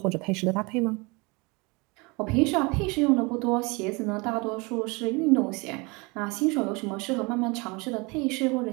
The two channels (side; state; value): left; quieter; 27.5 dB